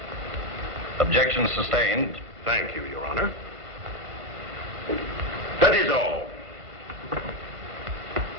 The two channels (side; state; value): left; late; 1.5 ms